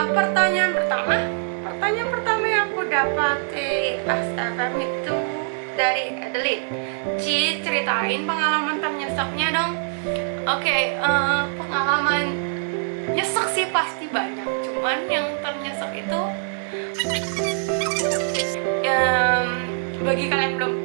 pertanyaan pertama yang aku dapat di XFM itu dari Adelaide. Ci, ceritain pengalaman ternyeseknya dong. Oke, pengalaman nyesek sih pasti banyak, cuman yang ternyesek itu bagi kalian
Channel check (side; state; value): left; silent; digital silence